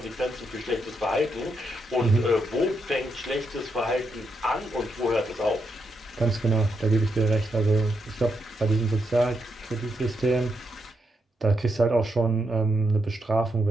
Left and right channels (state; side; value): normal; both; correlation 0.81